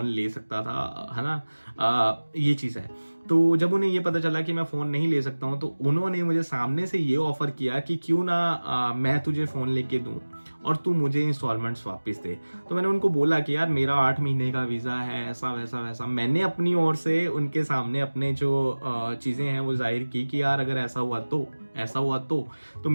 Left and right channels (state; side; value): inverted; both; correlation -1.00